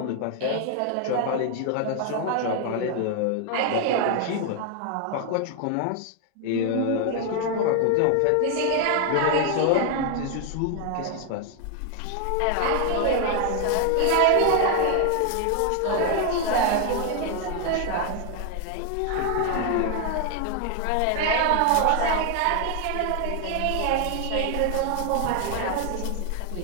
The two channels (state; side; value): different; both; correlation 0.00